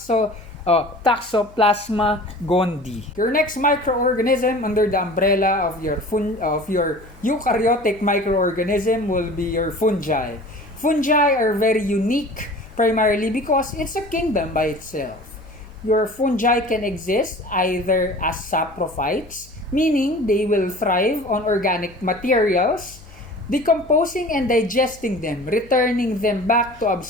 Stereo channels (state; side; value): noise; left; hum, 23 dB below the sound